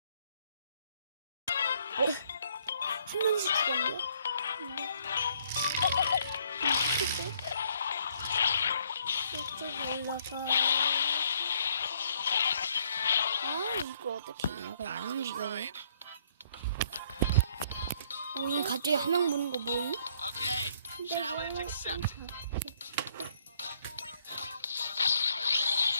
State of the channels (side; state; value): both; inverted; correlation -0.66